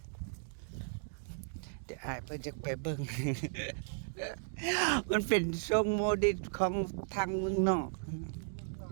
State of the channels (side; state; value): left; silent; digital silence